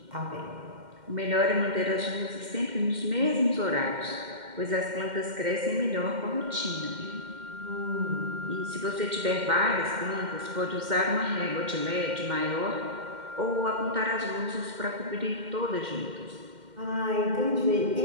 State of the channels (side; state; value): left; late; 2.1 ms